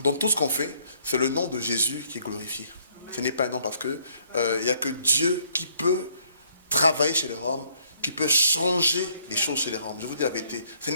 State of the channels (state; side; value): inverted; both; correlation -0.66